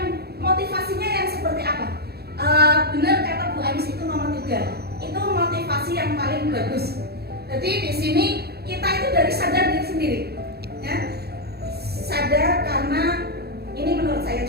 motivasinya yang seperti apa? Benar kata Bu Anis itu nomor 3. Itu motivasi yang paling bagus. Jadi di sini kita itu dari sadar diri sendiri, ya. Sadar karena ini menurut saya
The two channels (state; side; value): late; left; 0.46 ms